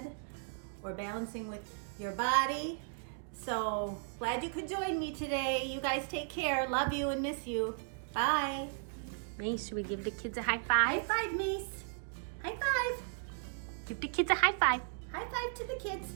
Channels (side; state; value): left; silent; digital silence